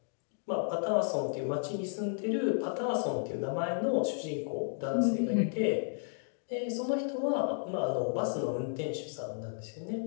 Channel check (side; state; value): right; silent; digital silence